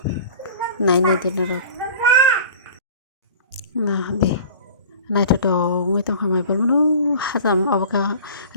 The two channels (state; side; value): inverted; both; correlation -0.42